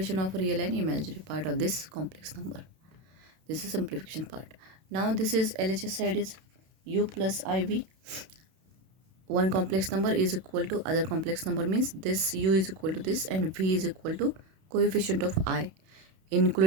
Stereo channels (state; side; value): late; left; 31 ms